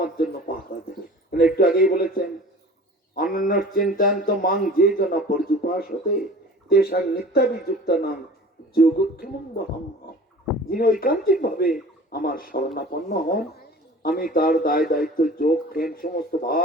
জন্য পাহারা দেবে। একটু আগেই বলেছেন, অনন্য চিন্তান্ত মাং যে জন পর্যুপাস হতে তেসাং নিত্যাবিযুক্ত নাম যোগক্ষেমং বহম। যিনি ঐকান্তিক ভাবে আমার শরণাপন্ন হন, আমি তার দায় দায়িত্ব যোগ ক্ষেম সমস্ত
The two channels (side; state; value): both; normal; correlation 0.43